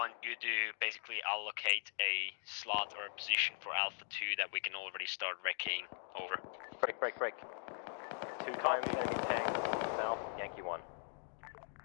you to basically allocate a slot or a position for Alpha 2 that we can already start wrecking. Over. Break. 2 times enemy tank, now Yankee 1.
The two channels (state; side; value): silent; right; 51 dB below the other